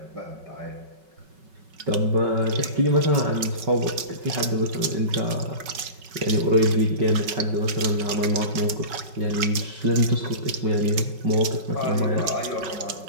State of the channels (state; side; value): late; left; 5.3 ms